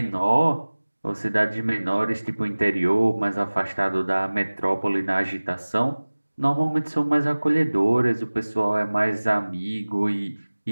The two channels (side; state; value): both; inverted; correlation -1.00